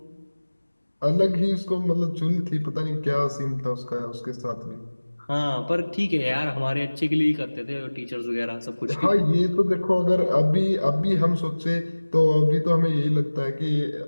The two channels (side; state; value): both; inverted; correlation -1.00